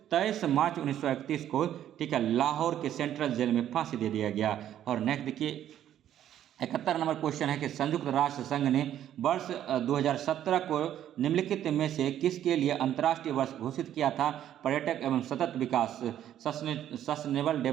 23 मार्च 1931 को ठीक है लाहौर के सेंट्रल जेल में फांसी दे दिया गया। और नेक्स्ट देखिए 71 नंबर क्वेश्चन है कि संयुक्त राष्ट्र संघ ने वर्ष 2017 को निम्नलिखित में से किसके लिए अंतर्राष्ट्रीय वर्ष घोषित किया था? पर्यटक एवं सतत विकास, सस्टेनेबल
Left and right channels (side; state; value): left; quieter; 11.1 dB